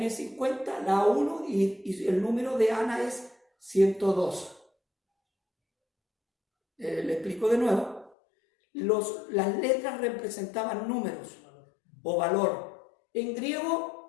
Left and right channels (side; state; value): right; drops out; at 8.1 s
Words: 50, la A 1, y el número de Ana es 102. Le explico de nuevo. Las letras representaban números o valor. En